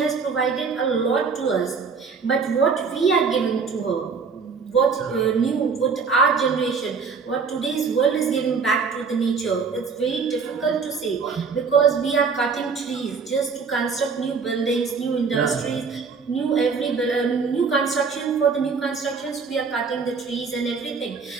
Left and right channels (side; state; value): left; quieter; 5.3 dB